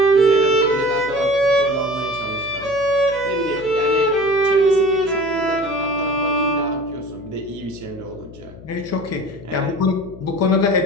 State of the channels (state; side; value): noise; left; hum, 18 dB below the sound